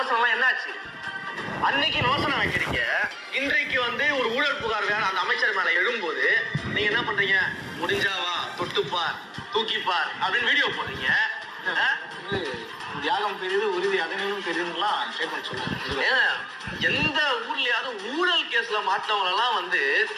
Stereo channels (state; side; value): identical; both; correlation 1.00